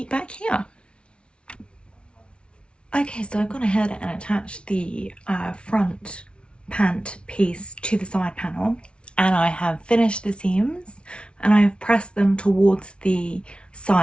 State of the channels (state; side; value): late; right; 0.058 ms